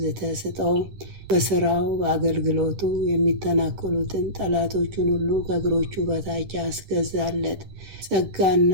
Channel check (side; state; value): left; late; 10 ms